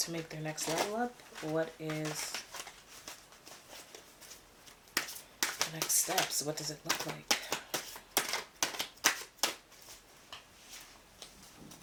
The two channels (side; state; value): both; identical; correlation 1.00